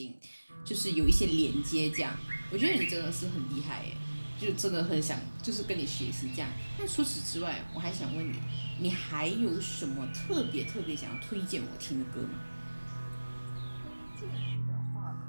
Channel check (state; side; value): inverted; both; correlation -1.00